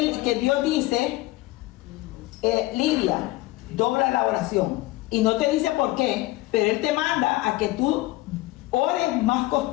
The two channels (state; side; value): quieter; right; 19.1 dB